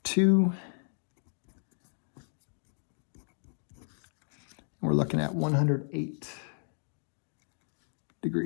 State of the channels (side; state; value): right; silent; 56 dB below the other